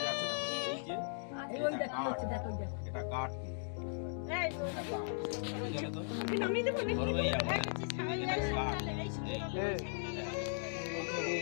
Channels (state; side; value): silent; right; digital silence